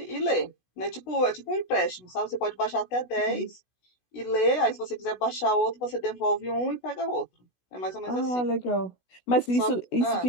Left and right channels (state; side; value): late; right; 16 ms